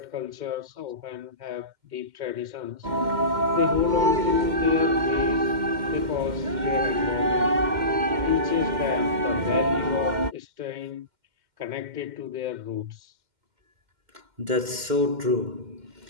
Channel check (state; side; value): late; left; 2.1 ms